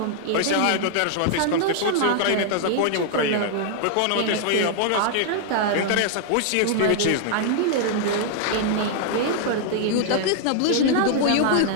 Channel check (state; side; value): different; both; correlation 0.00